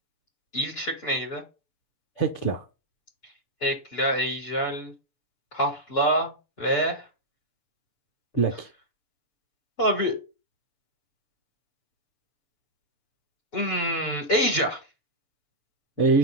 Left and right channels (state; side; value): late; right; 6.9 ms